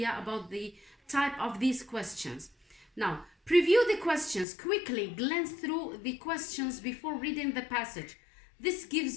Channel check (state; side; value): drops out; right; at 4.5 s